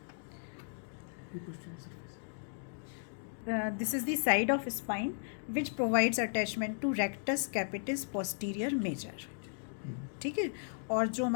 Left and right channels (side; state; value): right; silent; digital silence